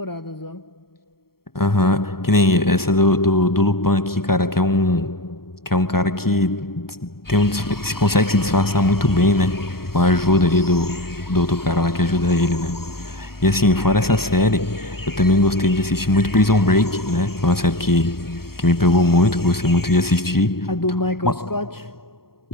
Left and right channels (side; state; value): right; late; 0.94 ms